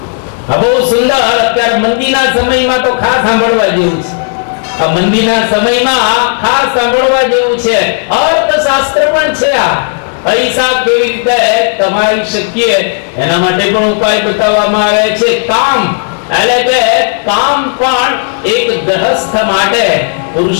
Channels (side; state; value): right; silent; 60 dB below the other